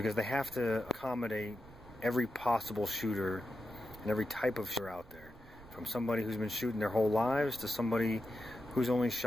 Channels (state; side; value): noise; right; rumble, 21 dB below the sound